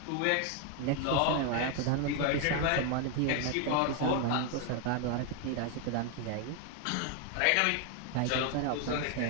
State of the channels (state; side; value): different; both; correlation 0.01